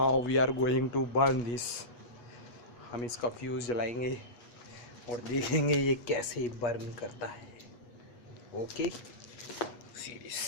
we are going to burn this. हम इसका फ्यूज़ जलाएंगे और देखेंगे ये कैसे बर्न करता है। ओके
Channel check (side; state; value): right; late; 8.3 ms